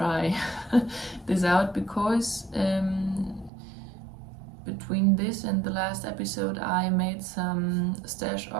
this out, because between this and the last episode I made some stash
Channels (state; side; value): drops out; left; at 3.5 s